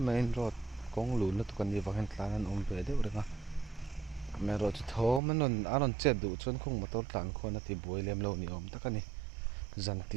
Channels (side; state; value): left; drops out; at 5.2 s